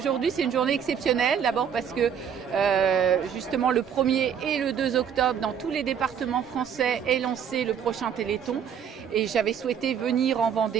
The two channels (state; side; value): quieter; left; 8.0 dB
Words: c'est une journée exceptionnelle, d'abord parce que justement le 1er et le 2 octobre dans tous les départements français est lancé le prochain Téléthon et j'avais souhaité venir en